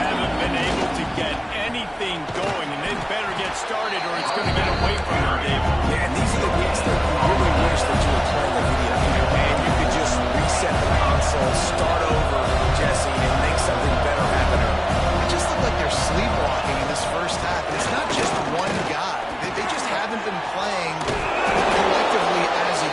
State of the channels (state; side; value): identical; both; correlation 1.00